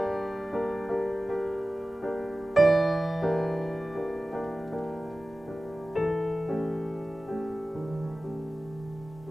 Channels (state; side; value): normal; both; correlation 0.96